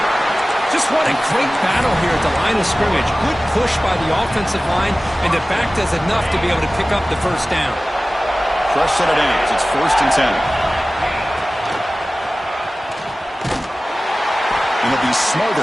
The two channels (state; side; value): normal; both; correlation 0.97